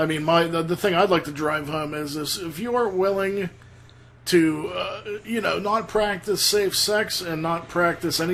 mean, the thing I'd like to drive home is this: if you are willing to, not practice safe sex and not practice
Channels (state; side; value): identical; both; correlation 1.00